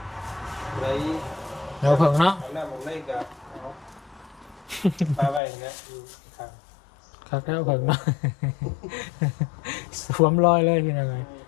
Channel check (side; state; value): right; drops out; at 5.4 s